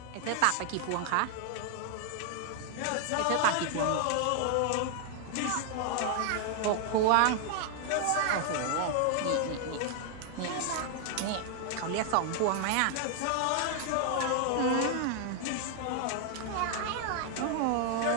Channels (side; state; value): both; different; correlation 0.00